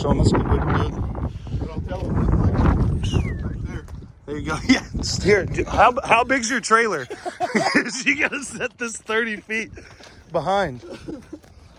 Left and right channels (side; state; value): both; identical; correlation 1.00